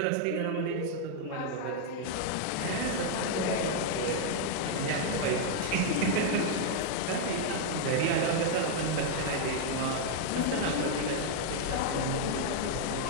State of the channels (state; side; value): different; both; correlation -0.01